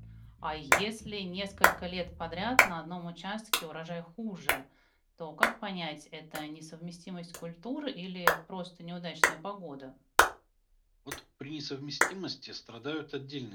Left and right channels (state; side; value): identical; both; correlation 1.00